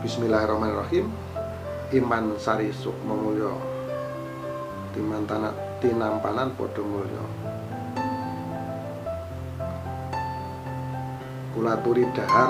Bismillahirrahmanirrahim. Iman sari sukma mulya, tinampanan padha mulya, kula aturi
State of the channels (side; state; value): both; identical; correlation 1.00